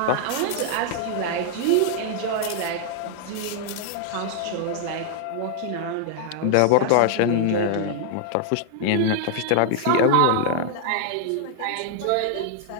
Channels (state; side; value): different; both; correlation -0.01